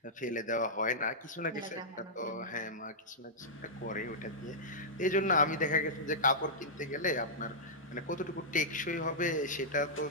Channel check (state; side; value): normal; both; correlation -0.12